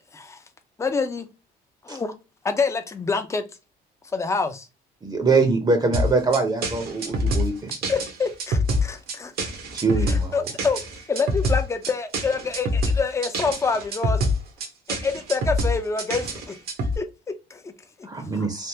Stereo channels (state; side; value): normal; both; correlation 0.63